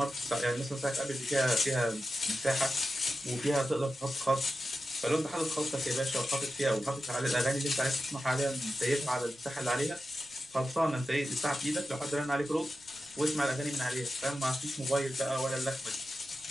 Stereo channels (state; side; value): noise; right; rumble, 29 dB below the sound